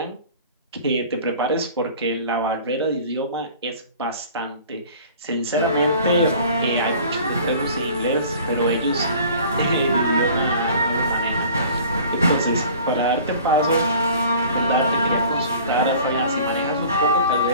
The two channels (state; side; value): inverted; both; correlation -0.47